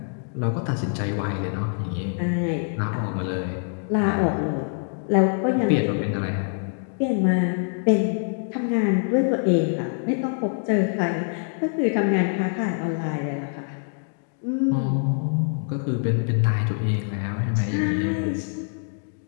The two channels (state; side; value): silent; right; 58 dB below the other